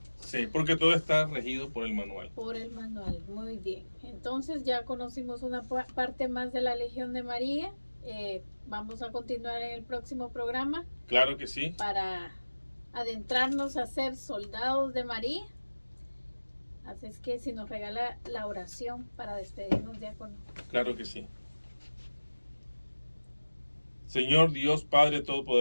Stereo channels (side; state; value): both; inverted; correlation -1.00